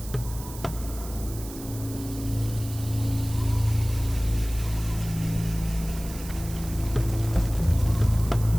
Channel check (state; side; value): noise; right; hiss, 14 dB below the sound